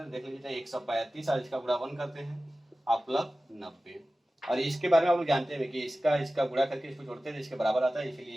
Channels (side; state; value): both; normal; correlation 0.96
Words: देख लीजिए। 135 और इसका गुणा 1 करते हैं और प्लस 90, और इसके बारे में आप लोग जानते हैं कि इसका गुणा करके इसको जोड़ते हैं, इसके बराबर आता है, इसलिए